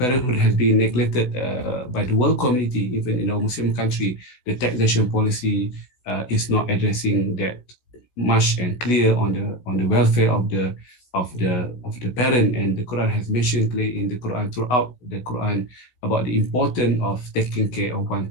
has been neglected by the world community, even in our Muslim country. The taxation policy is not addressing that much and clear on the welfare of the parent. And the Quran has mentioned clearly in the Quran, throughout the Quran, about the importance of taking care of one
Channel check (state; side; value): late; right; 16 ms